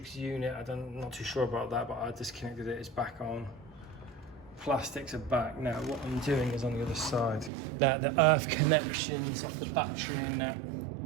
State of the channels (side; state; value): left; drops out; at 7.5 s